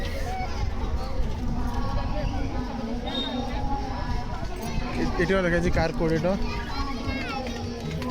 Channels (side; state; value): both; identical; correlation 1.00